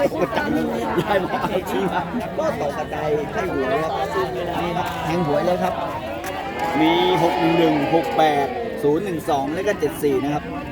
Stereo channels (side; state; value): both; identical; correlation 1.00